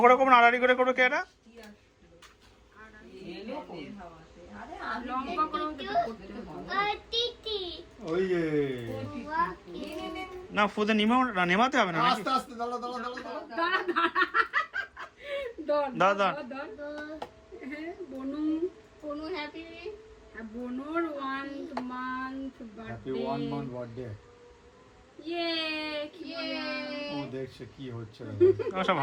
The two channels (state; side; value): identical; both; correlation 1.00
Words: করে করবো না আড়াআড়ি করে করবো কে এটা? ওই যে না ফুদে নেমাতে হবে না নাকি? আস্তে আস্তে দাঁড়া দাঁড়া দাঁড়া দাদা বনু বনু হ্যাপি বনুর 1 month happy birthday 1 month birthday. ও দেখছে কি হচ্ছে রে। আমার সব